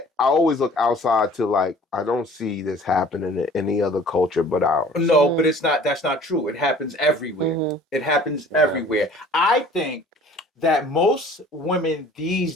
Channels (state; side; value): normal; both; correlation 0.49